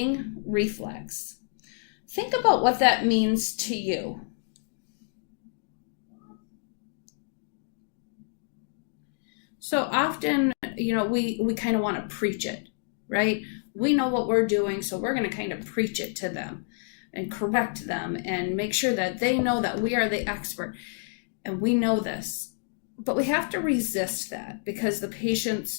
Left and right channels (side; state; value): right; silent; digital silence